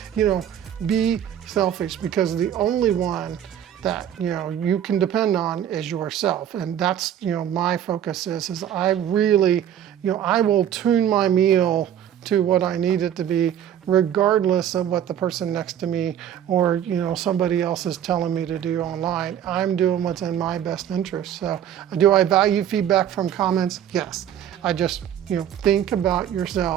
you know, be selfish, because the only one that, you know, you can depend on is yourself. And that's, you know, my focus is I really, you know, I will tune my meal to what I need it to be, regardless of what the person next to me or, you know, somebody else is telling me to do online. I'm doing what's in my best interest. So do I value feedback from comments? Yes. I just, you know, think about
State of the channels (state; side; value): quieter; left; 10.0 dB